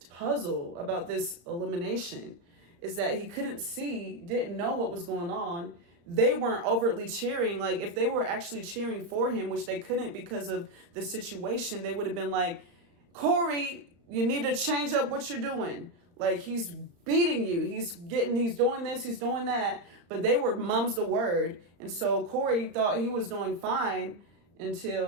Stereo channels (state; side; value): late; left; 34 ms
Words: puzzle, about this elimination, is that he didn't know what was going on. They weren't overtly cheering. Like, if they were actually cheering for him, which they couldn't because of the situation, they would have been like, Corey, you need to change up what you're doing. Like, he's beating you. He's doing this, he's doing that. But they were mum's the word. And so Corey thought he was doing fine